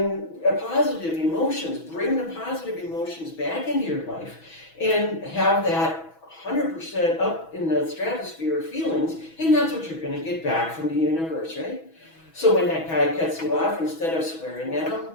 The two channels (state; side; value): late; right; 6.1 ms